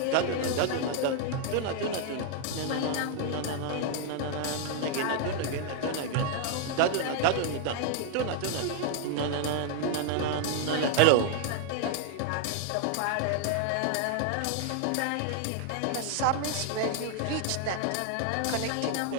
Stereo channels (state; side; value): different; both; correlation 0.00